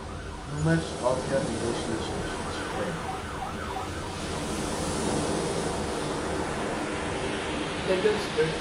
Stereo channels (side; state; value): both; identical; correlation 1.00